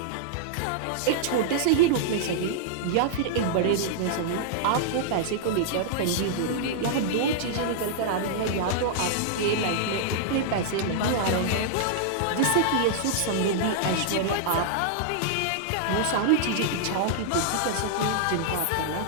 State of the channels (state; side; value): different; both; correlation -0.01